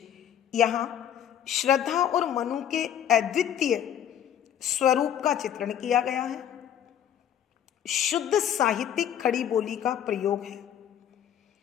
यहाँ श्रद्धा और मनु के अद्वितीय स्वरूप का चित्रण किया गया है। शुद्ध साहित्यिक खड़ी बोली का प्रयोग है।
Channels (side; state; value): right; quieter; 9.8 dB